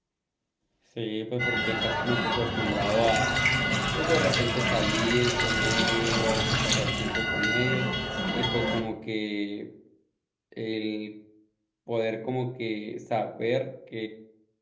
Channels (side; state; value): both; identical; correlation 1.00